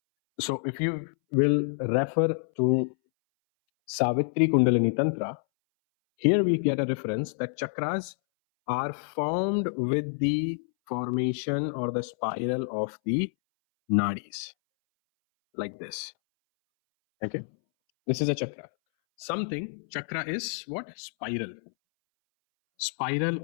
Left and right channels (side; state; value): right; silent; 59 dB below the other